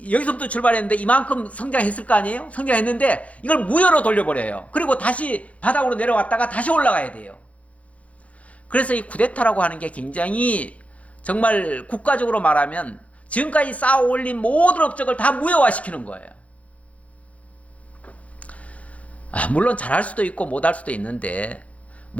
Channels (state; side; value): late; right; 0.066 ms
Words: 여기서부터 출발했는데 이만큼 성장했을 거 아니에요? 성장했는데 이걸 무효로 돌려버려요. 그리고 다시 바닥으로 내려왔다가 다시 올라가야 돼요. 그래서 이 쿠데타라고 하는 게 굉장히 정말 국가적으로 말하면 지금까지 쌓아 올린 모든 업적을 다 무효화시키는 거예요. 물론 잘할 수도 있고 못할 수도 있는데